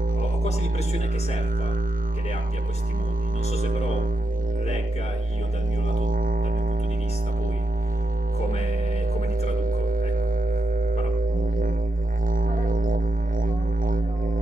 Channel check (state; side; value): normal; both; correlation 0.86